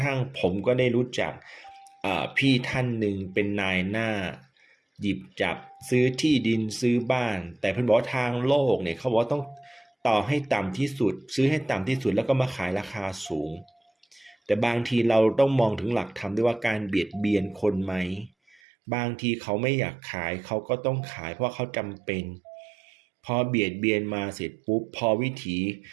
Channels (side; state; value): left; drops out; at 18.6 s